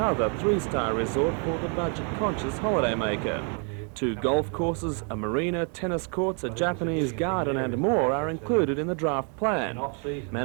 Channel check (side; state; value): left; quieter; 39.3 dB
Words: 3-star resort for the budget-conscious holidaymaker. 2 golf courses, a marina, tennis courts, a Japanese garden and more are included in the draft plan.